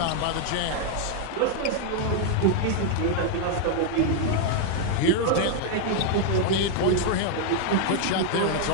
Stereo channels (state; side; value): different; both; correlation 0.00